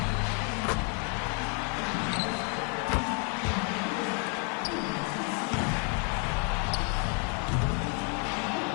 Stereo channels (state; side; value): quieter; right; 35.6 dB